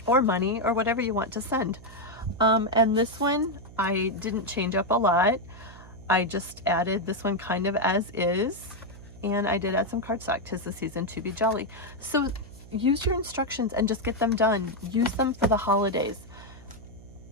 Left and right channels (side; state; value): right; noise; hum, 19 dB below the sound